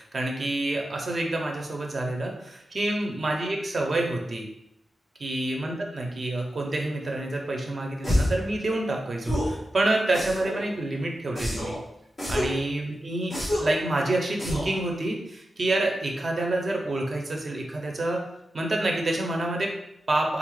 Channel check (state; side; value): normal; both; correlation 0.90